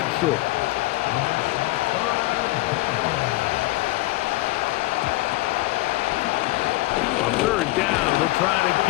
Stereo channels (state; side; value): quieter; right; 19.9 dB